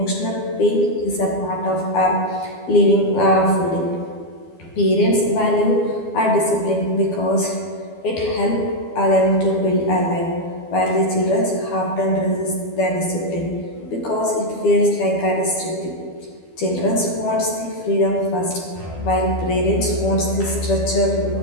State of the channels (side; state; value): right; late; 12 ms